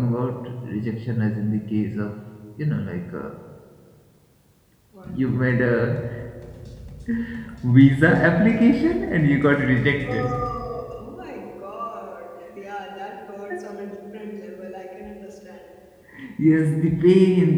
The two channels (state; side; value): identical; both; correlation 1.00